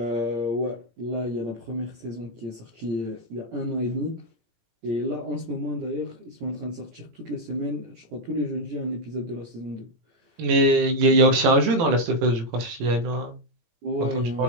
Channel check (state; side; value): late; left; 18 ms